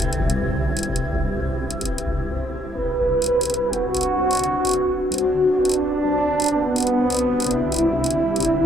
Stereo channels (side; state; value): both; normal; correlation 0.72